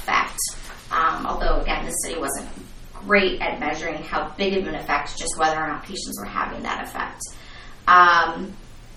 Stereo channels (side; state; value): both; identical; correlation 1.00